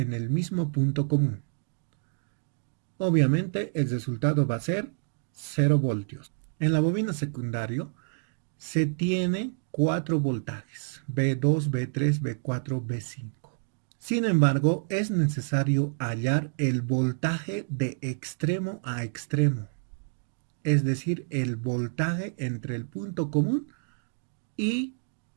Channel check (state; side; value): silent; left; digital silence